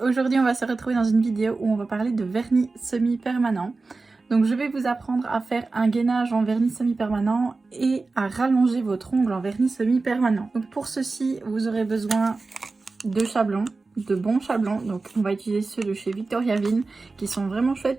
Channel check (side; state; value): left; quieter; 3.7 dB